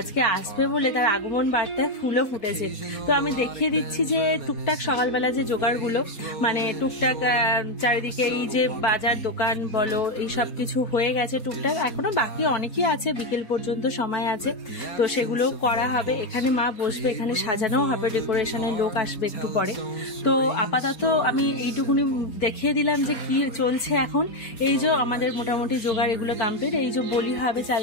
আসবে বলে তার আগমন বার্তায় ফুলও ফুটেছে। তো আমি দেখিয়ে দিচ্ছি যে টুকটাক সকালবেলা যে জোগাড়গুলো, মানে টুকটাক চারিদিকে এই যে বাজার দোকান বলো এই সব কিছু হয়ে গেছে টুকটাক, এখনো বাকি অনেকই আছে, বিকেল পর্যন্ত সময় আছে, তো সেগুলো করা হবে। এখানে মা বসবে, এখানে সাজানোও হবে, ডেকোরেশনের লোক আসবে একটু পরে। তো আপাতত আমি এইটুকুনি দেখিয়ে দিলাম যে কি চলছে এখন। এই যে আমাদের মোটামুটি জোগাড় এগুলো কমপ্লিট। এই যে বলি হবে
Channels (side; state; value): right; late; 4.2 ms